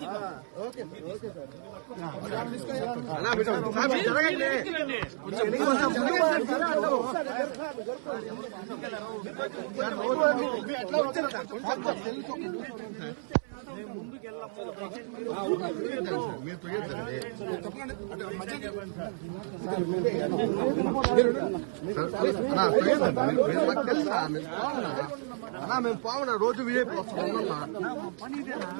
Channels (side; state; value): left; silent; 57 dB below the other